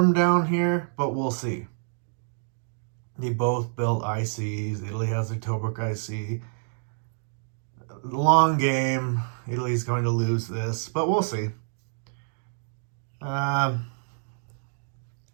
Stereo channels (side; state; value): left; silent; digital silence